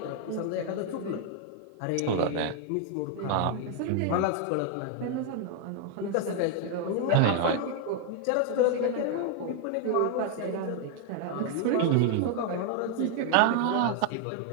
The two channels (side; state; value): both; different; correlation 0.00